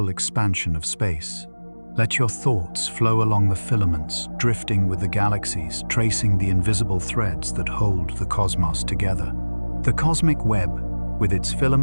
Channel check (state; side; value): inverted; both; correlation -1.00